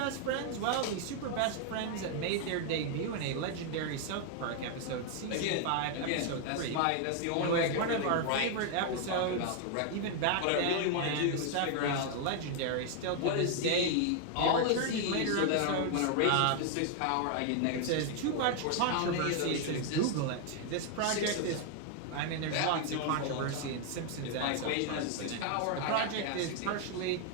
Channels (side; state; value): both; different; correlation 0.00